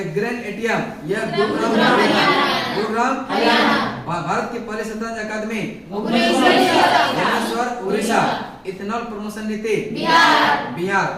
ग्रेन एटीएम यह गुरुग्राम, भारत की पहली शतरंज अकादमी भुवनेश्वर, उड़ीसा। इथेनॉल प्रमोशन नीति बिहार।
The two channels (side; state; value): both; identical; correlation 1.00